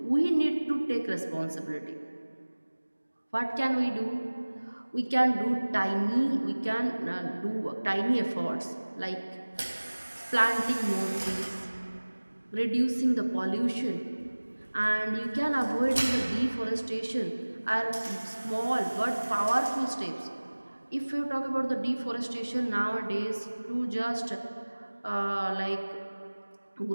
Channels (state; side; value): inverted; both; correlation -1.00